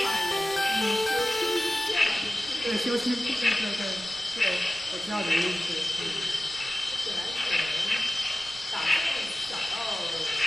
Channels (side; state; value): right; noise; rumble, 21 dB below the sound